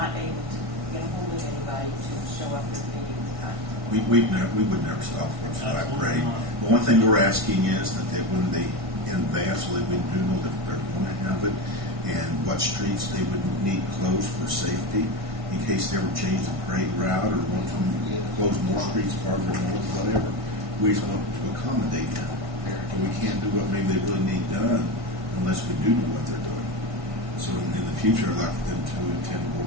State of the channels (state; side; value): late; left; 1.6 ms